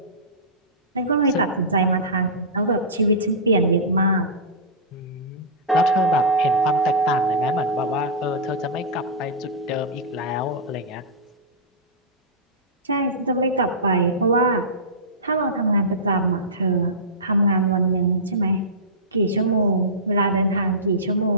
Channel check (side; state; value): both; normal; correlation -0.19